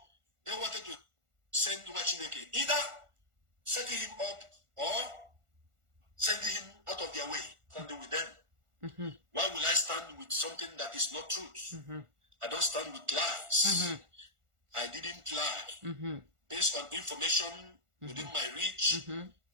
they wanted to send Chineke, either setting him up or sending him out of their way, standing with them. Why will I stand with something that is not truth? I don't stand with lies. I didn't lie. Based on information within my reach,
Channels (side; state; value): left; late; 1.4 ms